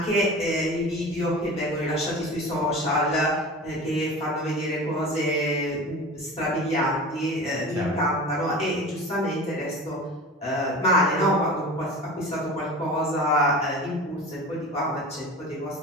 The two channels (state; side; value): normal; both; correlation 0.35